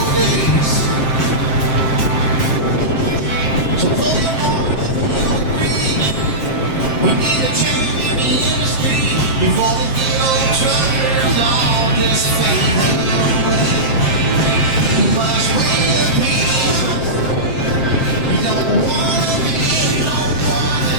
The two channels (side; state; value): right; late; 7.6 ms